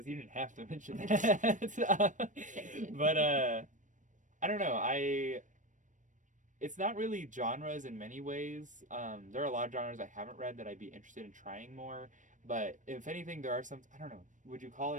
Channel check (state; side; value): late; left; 0.37 ms